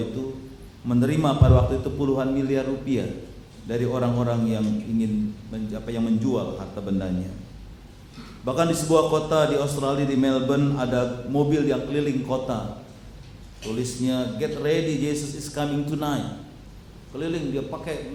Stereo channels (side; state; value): both; identical; correlation 1.00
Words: itu menerima pada waktu itu puluhan miliar rupiah dari orang-orang yang ingin menjual harta bendanya. Bahkan di sebuah kota di Australia, di Melbourne, ada mobil yang keliling kota. Tulisnya "Get ready, Jesus is coming tonight." Keliling dia pakai